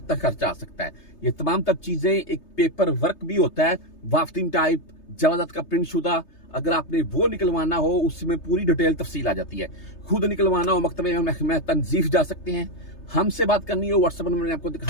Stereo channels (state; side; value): late; right; 3.3 ms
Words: खर्चा आ सकता है? ये तमाम तब चीजें, एक पेपर वर्क भी होता है, वाफ्तिंग टाइप, जवाजत का प्रिंट शुदा, अगर आपने वो निकलवाना हो उसमें पूरी डिटेल तफसील आ जाती है। खुद निकलवाना हो मकतबे में तंजीफ जा सकते हैं। हमसे बात करनी हो व्हाट्सएप नंबर मैंने आपको